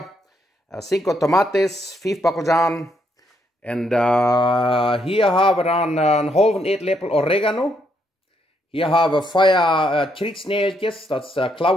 5 tomates, 5 bacaljan. En hier haben wir dann einen halben Eetlepel Oregano. Hier haben wir 4 Trietsnäeltjes, das ist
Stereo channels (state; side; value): normal; both; correlation 0.75